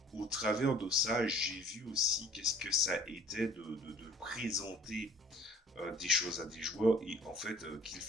au travers de ça, j'ai vu aussi qu'est-ce que ça était de présenter des choses à des joueurs et en fait qu'ils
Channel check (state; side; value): normal; both; correlation 0.51